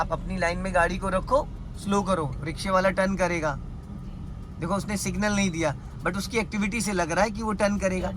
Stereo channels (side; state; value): both; identical; correlation 1.00